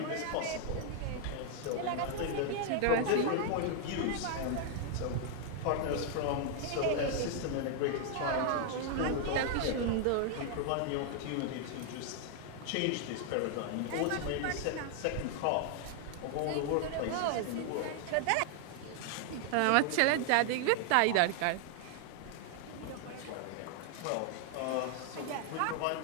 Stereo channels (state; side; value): different; both; correlation 0.00